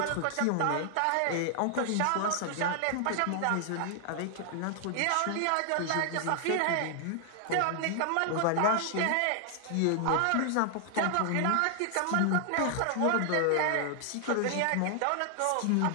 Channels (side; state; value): both; different; correlation 0.00